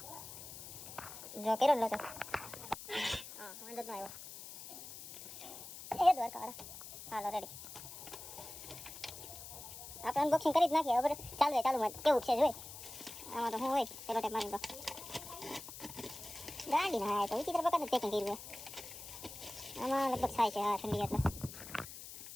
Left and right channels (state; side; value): noise; left; hiss, 12 dB below the sound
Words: જો કેરો લો છો. હા વાંધો ન આવ્યો. એ દ્વારકાવાળા. હાલો રેડી. આપણે અનબોક્સિંગ કરી જ નાખીએ. હવે ચાલુમાં કેવું છે જોઈ. આમાં તો શું હોય પેલો ટેપ મારી. તો ગાડી ના તો વિચિત્ર પ્રકારનું પેકિંગ કર્યું. આમાં લગભગ થાય છે. હા ઠંડી એટલે